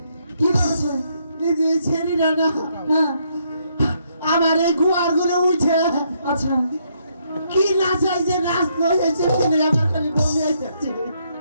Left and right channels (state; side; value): inverted; both; correlation -0.73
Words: কি করেছে এই যে ছেড়ি না না হ্যাঁ আমার এই গুয়ার ঘুরে উঠে আচ্ছা কি নাচ হয়েছে নাচ হয়েছে কিনে আমার খালি বমি আইতেছে